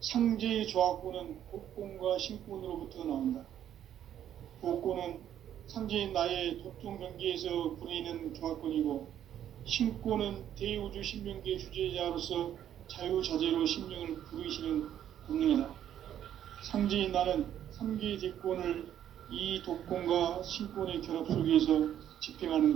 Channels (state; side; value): quieter; left; 10.6 dB